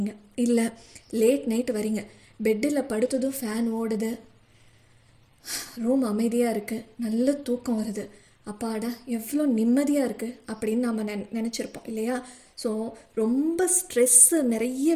இல்லை லேட் நைட் வரீங்க, பெட்டில் படுத்ததும் ஃபேன் ஓடுது, ரூம் அமைதியாக இருக்குது, நல்ல தூக்கம் வருது, அப்பாடா எவ்வளோ நிம்மதியாக இருக்குது அப்படின்னு நம்ம நினச்சிருப்போம் இல்லையா? ஸோ ரொம்ப ஸ்ட்ரெஸ்ஸு நிறைய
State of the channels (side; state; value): both; identical; correlation 1.00